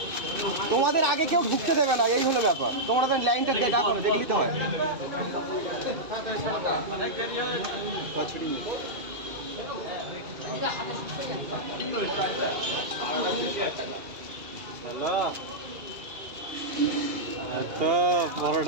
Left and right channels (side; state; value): left; late; 2.5 ms